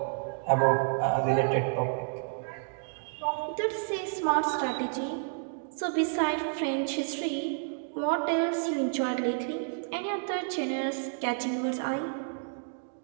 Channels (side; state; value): left; silent; digital silence